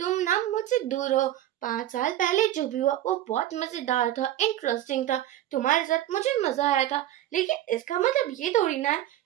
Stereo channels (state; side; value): quieter; left; 13.0 dB